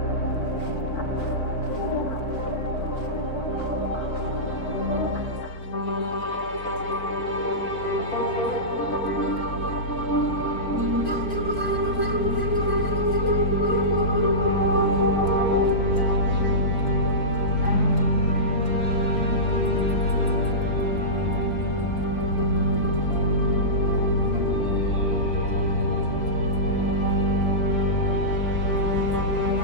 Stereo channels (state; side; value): late; right; 4.5 ms